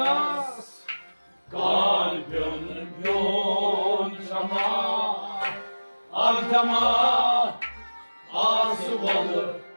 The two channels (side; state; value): both; inverted; correlation -1.00